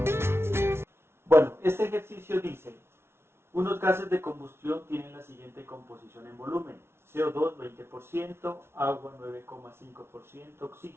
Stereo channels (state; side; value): late; left; 0.12 ms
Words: Bueno, este ejercicio dice, unos gases de combustión tienen la siguiente composición en volumen: CO2 20%, agua 9,5%,